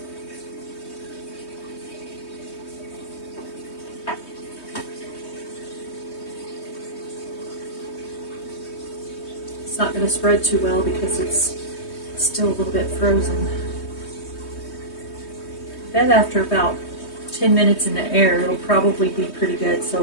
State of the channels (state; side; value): late; right; 3.2 ms